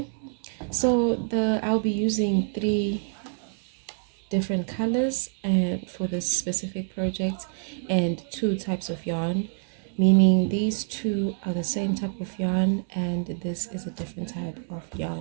so I'll be using 3 different colors and for this specific project, and 2 types of yarn, meaning these 2 are the same type of yarn and this is a different type of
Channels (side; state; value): left; silent; 60 dB below the other